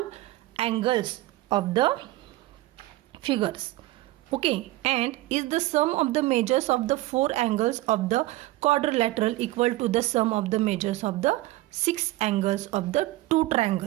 angles of the figures. Okay, and is the sum of the measures of the 4 angles of the quadrilateral equal to the sum of the measures of the 6 angles of the 2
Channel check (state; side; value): quieter; left; 17.8 dB